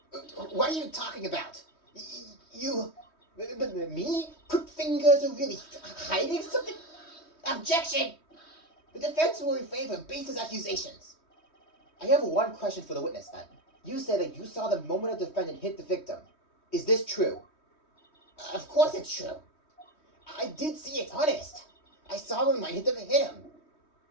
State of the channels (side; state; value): right; late; 3.2 ms